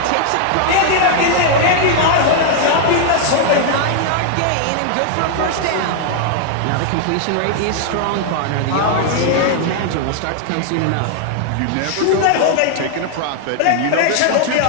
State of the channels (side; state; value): both; different; correlation 0.00